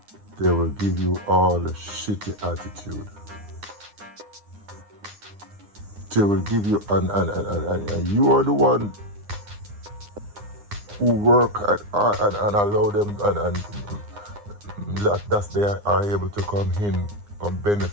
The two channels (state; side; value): late; left; 9.8 ms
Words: they will give you all the shitty attitude. They will give you, and you are the one who work and allow them, and that they are able to come in and